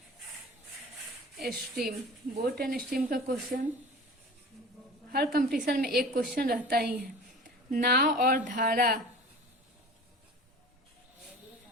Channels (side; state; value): both; normal; correlation 0.39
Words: stream boat and stream का क्वेश्चन हर कंपटीशन में एक क्वेश्चन रहता ही है। नाव और धारा,